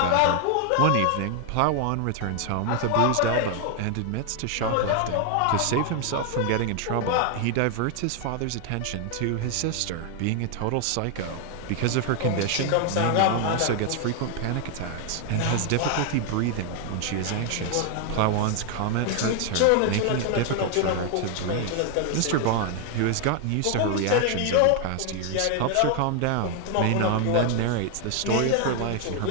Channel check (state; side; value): different; both; correlation 0.00